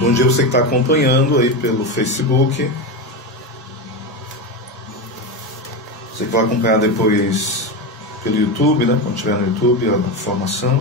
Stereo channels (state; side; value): normal; both; correlation 0.17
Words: dia você que está acompanhando aí pelo Facebook. Você que vai acompanhar depois pelo YouTube, né? Quando estiver no YouTube, a